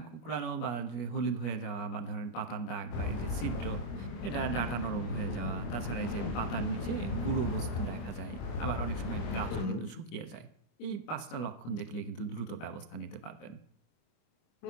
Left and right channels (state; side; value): late; right; 25 ms